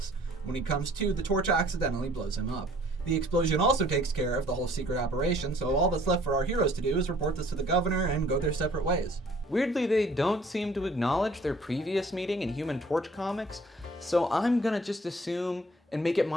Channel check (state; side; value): normal; both; correlation 0.56